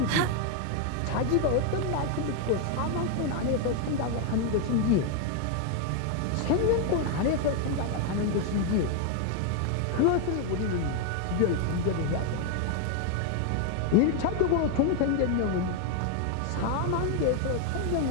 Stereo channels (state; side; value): different; both; correlation 0.01